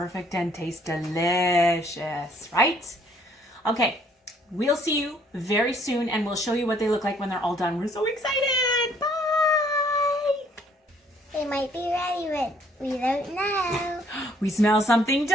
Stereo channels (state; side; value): normal; both; correlation 0.63